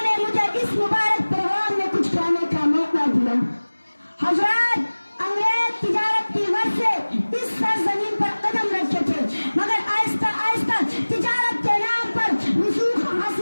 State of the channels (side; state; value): both; inverted; correlation -1.00